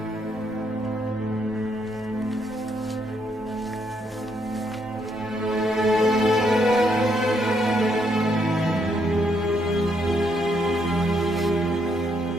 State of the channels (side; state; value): both; normal; correlation 0.74